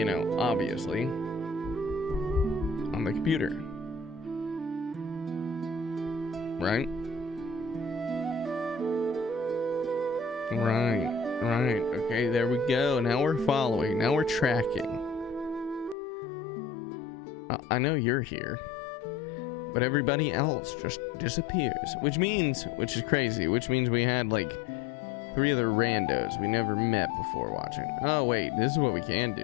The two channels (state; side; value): drops out; right; at 16.0 s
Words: know, obviously on the computer, right? Right. Okay, there we go. Now we're following. Now we're tracking. I know you're here, but everybody else just disappears. Which is crazy, which means we had like 3 other randos we never met before watching. Oh wait, this is what we can